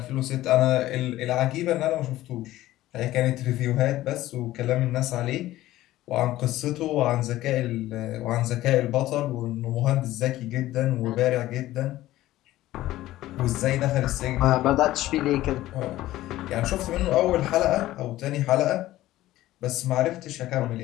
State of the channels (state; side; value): quieter; right; 15.5 dB